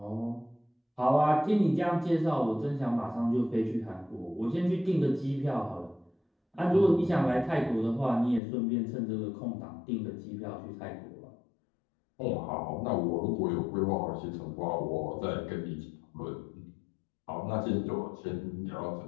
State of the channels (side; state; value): right; drops out; at 8.4 s